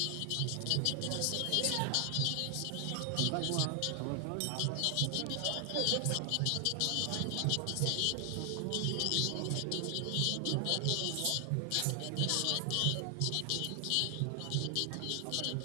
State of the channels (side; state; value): both; different; correlation 0.00